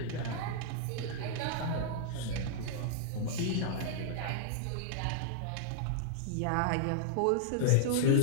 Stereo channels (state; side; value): different; both; correlation -0.01